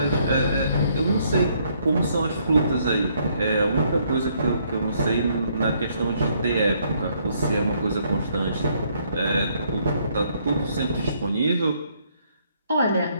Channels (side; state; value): both; inverted; correlation -0.69